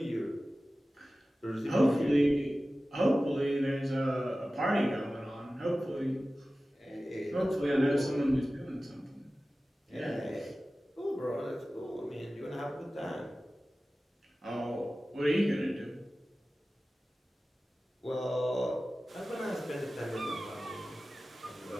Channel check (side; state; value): both; normal; correlation 0.96